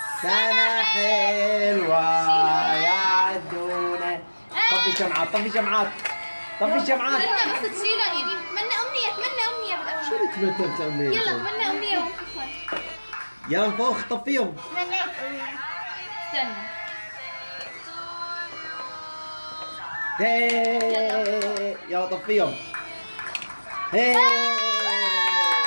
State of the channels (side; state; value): both; inverted; correlation -1.00